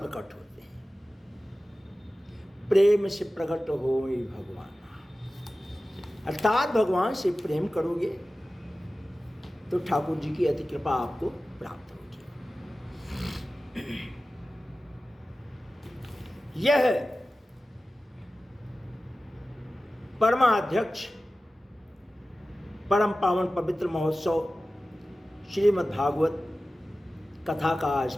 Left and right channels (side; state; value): both; normal; correlation 0.95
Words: होते हैं? प्रेम से प्रकट हो भगवान, अर्थात भगवान से प्रेम करोगे तो ठाकुर जी की अति कृपा आपको प्राप्त होगी। यह परमाध्यक्ष परम पावन पवित्र महोत्सव श्रीमद् भागवत कथा का आज